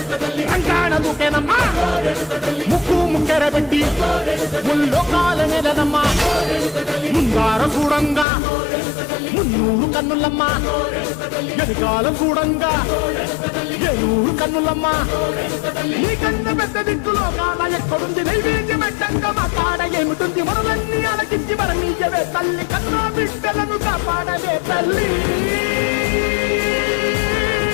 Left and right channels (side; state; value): right; drops out; at 8.2 s